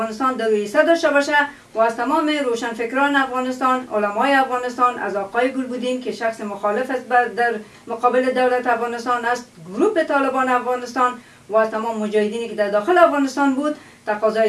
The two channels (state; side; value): identical; both; correlation 1.00